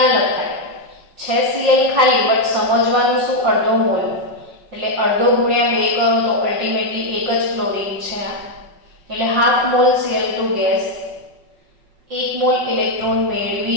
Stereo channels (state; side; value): late; left; 5.4 ms